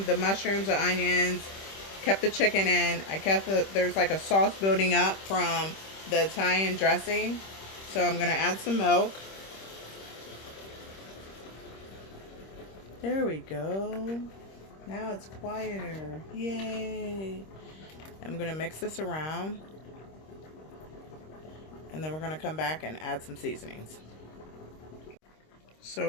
the mushrooms, the onions, kept the chicken in. There's like a sauce building up from the Italian dressing. So I'm going to add some milk. There we go. Now it's quieter. Yay! I'm going to mix this around. And then we're going to come back and add some seasonings.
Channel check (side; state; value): right; late; 26 ms